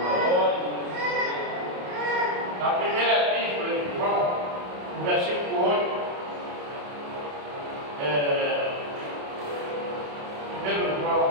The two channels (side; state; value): left; late; 28 ms